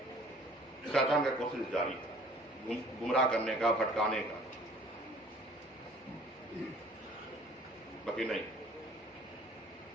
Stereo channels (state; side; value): normal; both; correlation 0.53